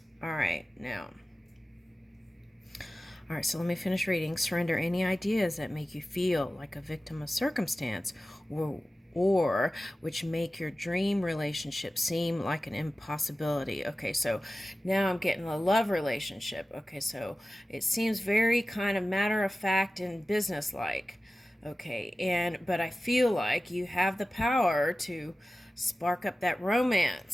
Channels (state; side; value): normal; both; correlation 0.95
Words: All right, now. All right, so let me finish reading. Surrender any ideas that make you feel like a victim of circumstance or which make your dream relationship seem like an impossibility. Okay, so now I'm getting a love relationship. Okay, so it seems very kind of matter of fact and business-like. Okay, but I feel like you have the power to spark up that